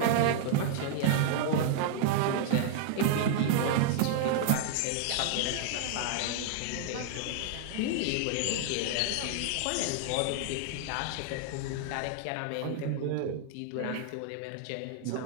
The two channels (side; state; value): both; different; correlation 0.00